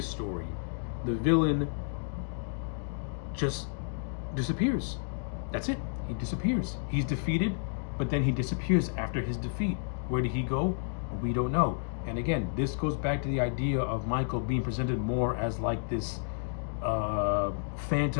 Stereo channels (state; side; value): silent; right; digital silence